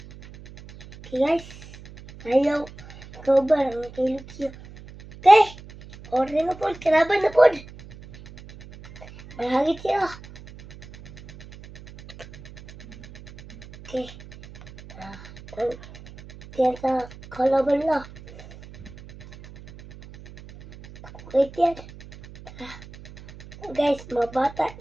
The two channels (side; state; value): right; noise; hum, 18 dB below the sound